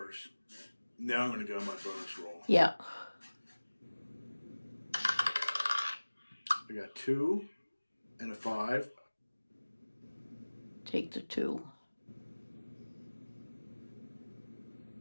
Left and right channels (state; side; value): inverted; both; correlation -1.00